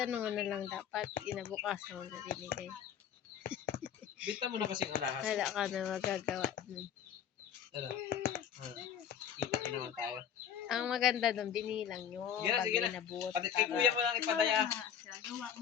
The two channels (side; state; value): right; quieter; 8.7 dB